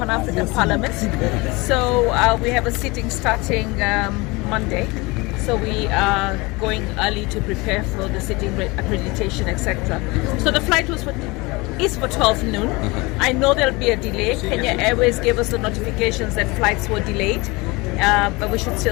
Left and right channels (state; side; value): quieter; right; 24.4 dB